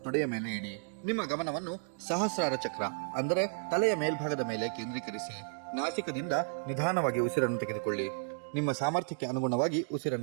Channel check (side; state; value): left; silent; digital silence